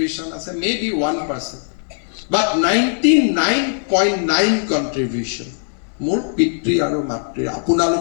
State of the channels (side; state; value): right; silent; digital silence